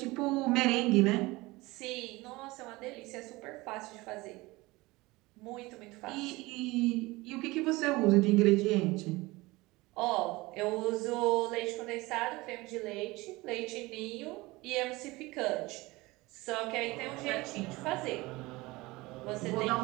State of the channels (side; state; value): left; quieter; 21.5 dB